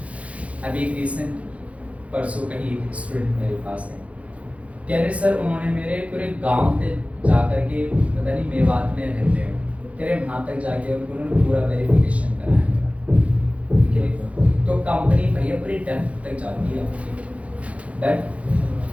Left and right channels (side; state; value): left; late; 0.064 ms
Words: अभी एक रिसेंट परसों का ही एक स्टूडेंट मेरे पास है, कह रहे सर उन्होंने मेरे पूरे गांव पे जा कर के, पता नहीं मेवात में रहते हैं, कह रहे वहाँ तक जाके उन्होंने पूरा वेरिफिकेशन कराया मेरा। तो कंपनी भैया पूरी डेप्थ तक जाती है दैट